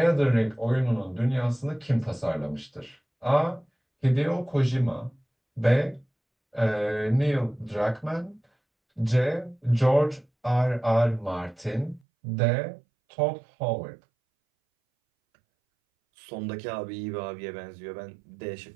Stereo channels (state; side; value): drops out; left; at 12.0 s